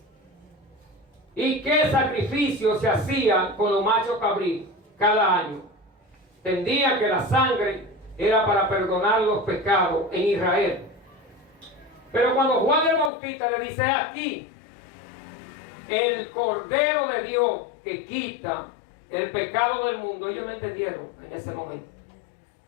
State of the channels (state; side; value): drops out; right; at 13.1 s